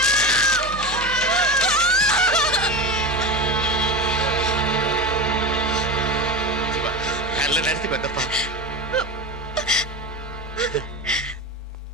நல்ல நேரத்துக்கு வந்தப்பா.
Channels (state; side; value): normal; both; correlation 0.24